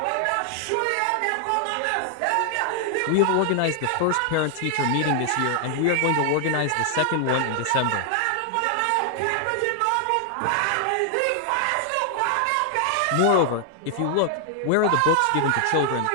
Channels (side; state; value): both; different; correlation 0.00